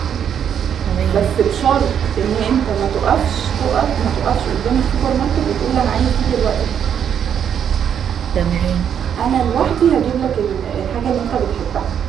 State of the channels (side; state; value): left; quieter; 8.6 dB